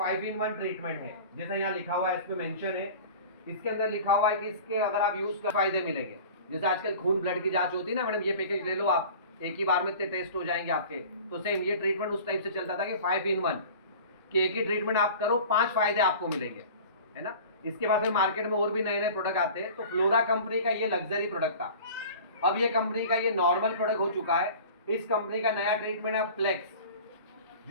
ट्रीटमेंट है, जैसा यहाँ लिखा हुआ है, इस पे मेंशन है, इसके अंदर लिखा हुआ है कि इसके अगर आप यूज कर फायदे मिलेंगे। जैसे आजकल खून ब्लड की जांच होती है ना मैडम, ये पैकेज ले लो आप, एक ही बार में इतने टेस्ट हो जाएंगे आपके। तो सेम ये ट्रीटमेंट उस टाइप से चलता था कि 5-in-1 कि एक ही ट्रीटमेंट आप करो, 5 फायदे आपको मिलेंगे, है ना। इसके बाद फिर मार्केट में और भी नए नए प्रोडक्ट आते हैं। तो फ्लोरा कंपनी का ये लग्जरी प्रोडक्ट था, अब ये कंपनी का ये नॉर्मल प्रोडक्ट हो चुका है। इस कंपनी का नया ट्रीटमेंट है फ्लेक्स,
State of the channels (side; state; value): both; inverted; correlation -0.41